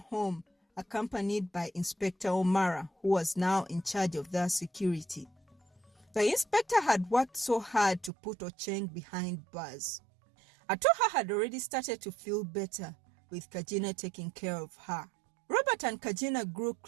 accompanied by Inspector Omara, who was now in charge of their security. The inspector had worked so hard to put Ocheng behind bars. Atuha had already started to feel better, with Kajina taking care of her. Robert and Kajina grew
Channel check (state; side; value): drops out; left; at 8.1 s